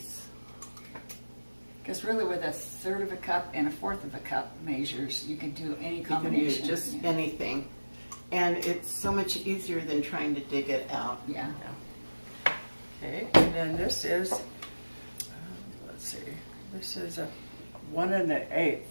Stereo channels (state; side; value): inverted; both; correlation -1.00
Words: Because really with 1/3 cup and 1/4 cup measures, you can do any combination. You can do just anything. And it's so much easier than trying to dig it out. Yeah. Okay, and then this is, let's see, this is a 1 1/8